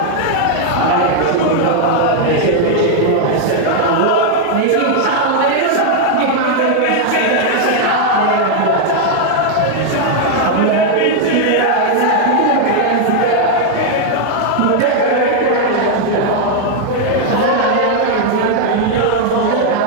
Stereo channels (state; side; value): different; both; correlation 0.00